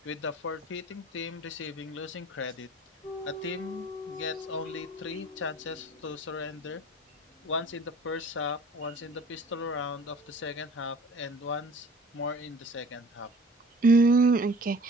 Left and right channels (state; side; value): normal; both; correlation 0.47